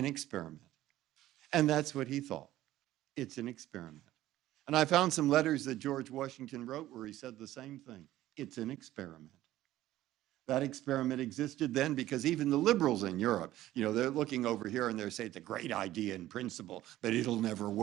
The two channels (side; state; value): left; quieter; 14.7 dB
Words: experiment. And that's what he thought. It's an experiment. And I found some letters that George Washington wrote where he said the same thing. It's an experiment. That experiment existed then because even the liberals in Europe, they're looking over here and they're saying it's a great idea in principle, but it'll never